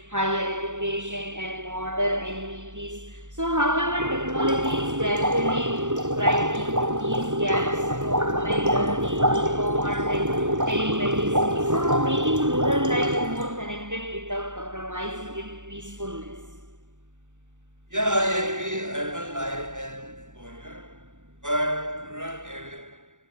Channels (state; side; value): late; left; 0.86 ms